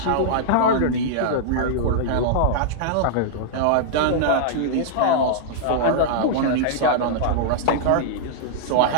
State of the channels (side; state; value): both; different; correlation -0.02